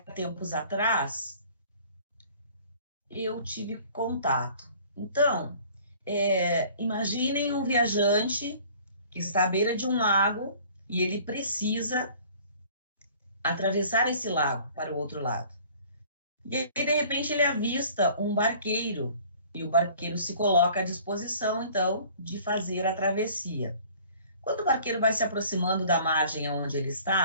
atrás eu tive contato. Então, imaginem um viajante que está à beira de um lago e ele precisa atravessar esse lago para o outro lado. E aí, de repente, ele avista um barqueiro e o barqueiro se coloca à disposição, então, de fazer a travessia. Quando o barqueiro vai se aproximando da margem onde ele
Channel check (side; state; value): both; inverted; correlation -0.51